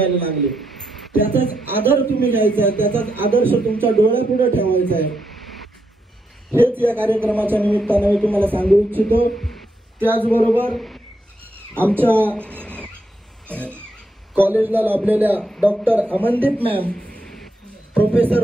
लागले. त्याचाच आदर तुम्ही घ्यायचा आहे, त्याचाच आदर्श तुमच्या डोळ्यापुढे ठेवायचा आहे. हेच या कार्यक्रमाच्या निमित्ताने मी तुम्हाला सांगू इच्छितो. त्याचबरोबर आमच्या कॉलेजला लाभलेल्या डॉक्टर अमनदीप मॅम, प्रोफेसर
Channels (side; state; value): both; normal; correlation 0.81